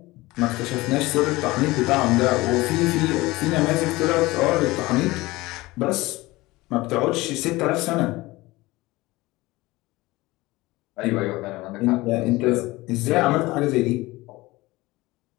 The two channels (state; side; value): quieter; right; 20.3 dB